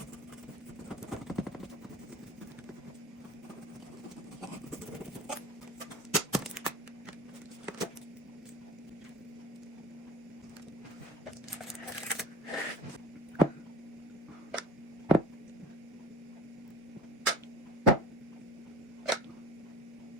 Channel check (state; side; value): normal; both; correlation 0.41